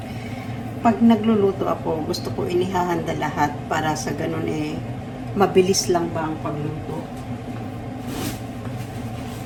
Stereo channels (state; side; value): identical; both; correlation 1.00